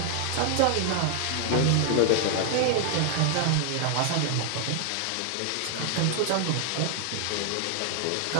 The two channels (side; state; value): both; different; correlation 0.00